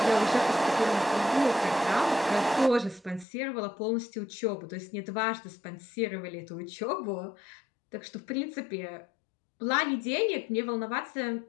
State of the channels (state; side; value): drops out; right; at 3.2 s